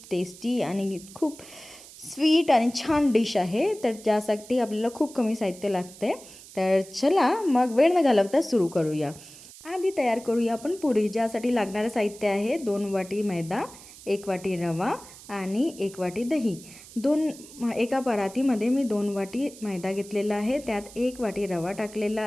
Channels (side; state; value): right; noise; hiss, 18 dB below the sound